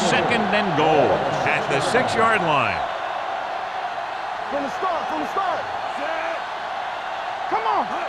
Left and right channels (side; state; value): both; identical; correlation 1.00